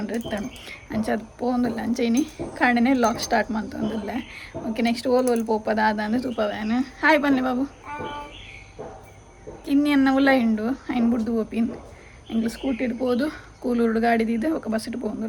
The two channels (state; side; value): identical; both; correlation 1.00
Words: ಇತ್ತಾನು ಅಂಚದು ಪೋಂದಿಲ್ಲ ಅಂಚೆನಿ ಕಾಂಡನೆ ಲಾಗ್ ಸ್ಟಾರ್ಟ್ ಮಾಡ್ತಂದಿಲ್ಲ. ಓಕೆ ನೆಕ್ಸ್ಟ್ ಓಲ್ ಪೋಪದ ಆದಂದ್ರೆ ತೂಪವ್ಯಾನು. ಹಾಯ್ ಬನ್ನಿ ಬಾಬು ಇನ್ನೆನ್ನ ಉಲ್ಲ ಹಿಂಡು ಐನ್ ಬುಡ್ದು ಓಪಿನ್ ಎಂಗ್ಳು ಸ್ಕೂಟಿ ಇಡ್ಬೋದು ಕೂಲೂರು ಗಾಡಿದಿದ್ದೆ ఒక ಬಸ್ ಇಟ್ಟು